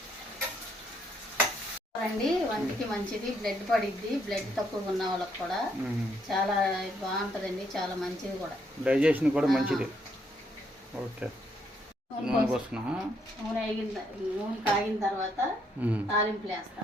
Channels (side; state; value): both; normal; correlation 0.73